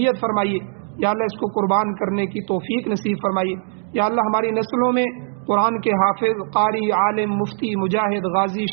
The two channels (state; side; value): silent; left; digital silence